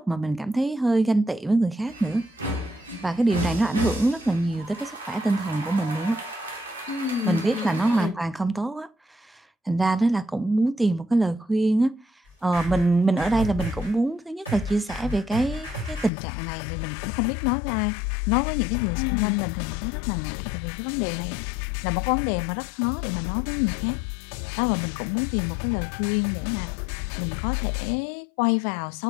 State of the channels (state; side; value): drops out; right; at 16.1 s